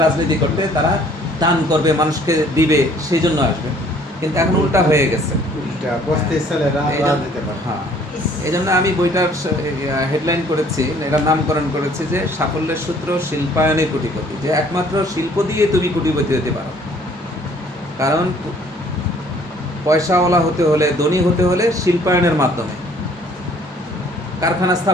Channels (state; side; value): normal; both; correlation 0.58